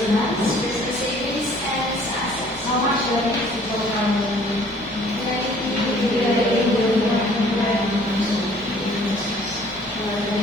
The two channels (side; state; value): both; normal; correlation 0.55